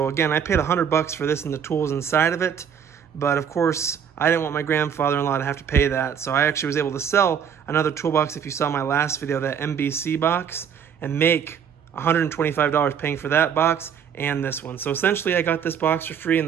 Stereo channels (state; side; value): quieter; left; 7.9 dB